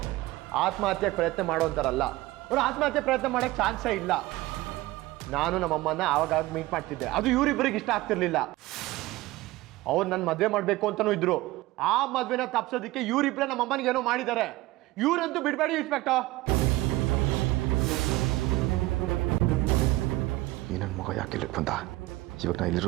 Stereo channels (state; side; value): quieter; left; 18.7 dB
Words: ಆತ್ಮಹತ್ಯೆಗೆ ಪ್ರಯತ್ನ ಮಾಡೋಂತಾರಲ್ಲ. ಅವ್ರು ಆತ್ಮಹತ್ಯೆ ಪ್ರಯತ್ನ ಮಾಡೋಕ್ಕೆ ಚಾನ್ಸೇ ಇಲ್ಲ. ನಾನು ನಮ್ಮಮ್ಮನ ಆವಾಗ ಮೀಟ್ ಮಾಡ್ತಿದ್ದೆ. ಅದು ಇವರಿಬ್ಬರಿಗೆ ಇಷ್ಟ ಆಗ್ತಿರ್ಲಿಲ್ಲ. ಅವ್ರು ನನ್ನ ಮದುವೆ ಮಾಡಬೇಕು ಅಂತಲೂ ಇದ್ರು. ಆ ಮದುವೆನ ತಪ್ಸೋದಕ್ಕೆ ಇವರಿಬ್ಬರೇ ನಮ್ಮಮ್ಮನಿಗೆ ಏನೋ ಮಾಡಿದ್ದಾರೆ. ಇವರಂತೂ ಬಿಡಬೇಡಿ ಇನ್ಸ್ಪೆಕ್ಟರ್. ಈ ನನ್ನ ಮಗ ಯಾಕೆ ಇಲ್ಲಿಗೆ ಬಂದ? ಇವಾಗ ನಾ